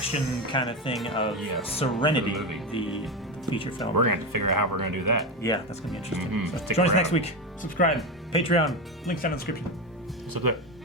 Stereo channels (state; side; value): normal; both; correlation 0.16